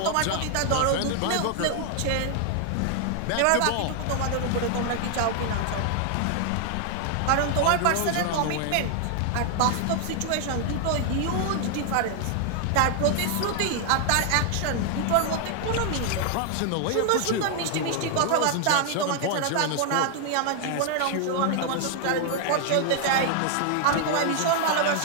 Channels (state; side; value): different; both; correlation 0.00